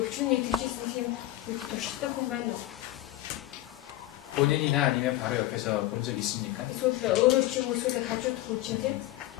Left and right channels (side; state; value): right; quieter; 15.6 dB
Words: тийжсэн юм туршдаг хүн байна уу? 본인이나 아니면 바로 옆에서 본 적 있습니까? Эсвэл өөрөө ч юм уу эсвэл хажууд хүн чинь те